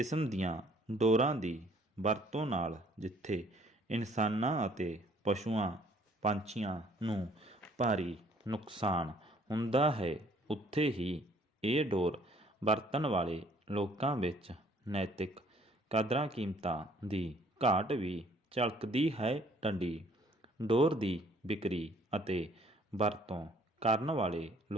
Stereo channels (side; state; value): both; normal; correlation 0.60